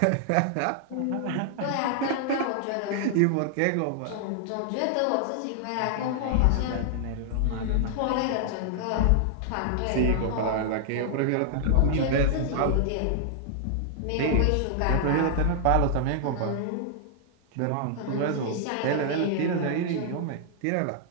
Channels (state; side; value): different; both; correlation -0.01